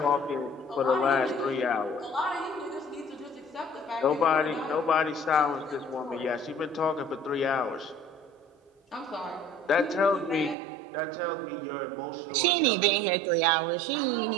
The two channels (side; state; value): left; drops out; at 10.6 s